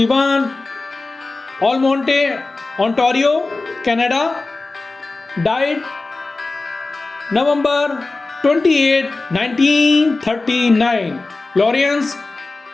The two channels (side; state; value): right; quieter; 3.4 dB